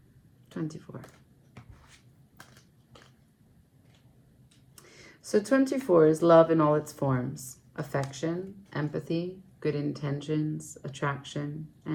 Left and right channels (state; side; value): identical; both; correlation 1.00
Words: So 24 is love in all its forms: affection, empathy, good intentions, attraction,